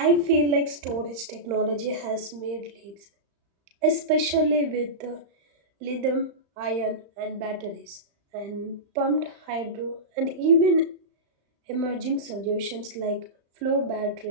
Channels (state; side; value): late; left; 35 ms